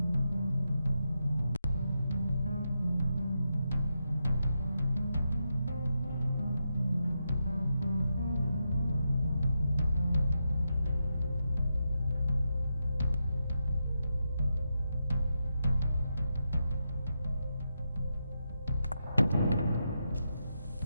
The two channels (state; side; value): inverted; both; correlation -0.86